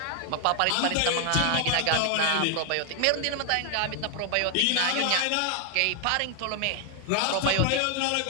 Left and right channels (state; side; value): different; both; correlation 0.00